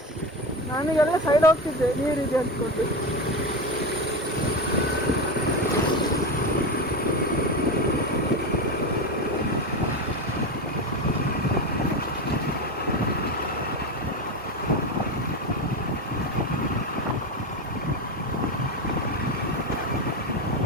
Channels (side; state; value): both; normal; correlation 0.19